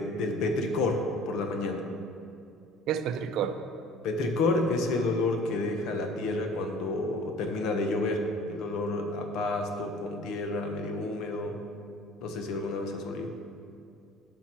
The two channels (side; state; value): both; normal; correlation 0.47